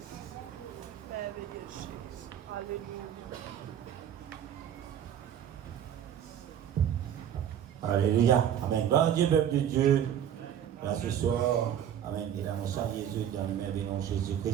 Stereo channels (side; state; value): left; quieter; 9.8 dB